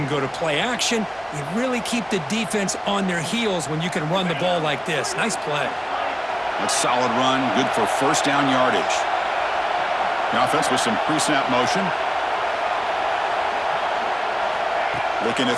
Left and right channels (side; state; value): both; identical; correlation 1.00